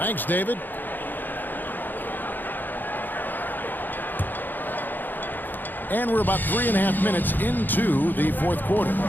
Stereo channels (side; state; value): right; late; 0.089 ms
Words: David. And we're about 3.5 minutes into the fourth quarter.